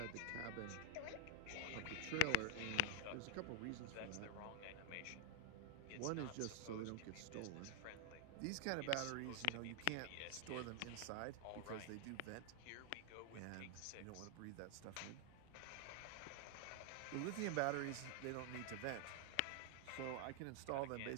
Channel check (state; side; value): different; both; correlation 0.00